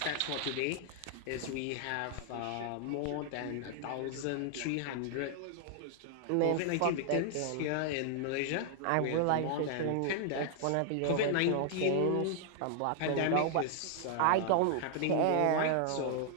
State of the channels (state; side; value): different; both; correlation 0.00